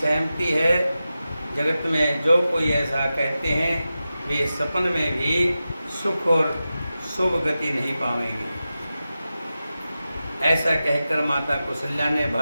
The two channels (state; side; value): inverted; both; correlation -0.93